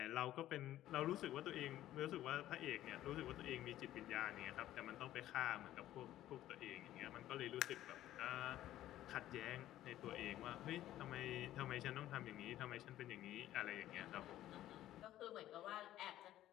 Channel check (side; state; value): right; quieter; 13.5 dB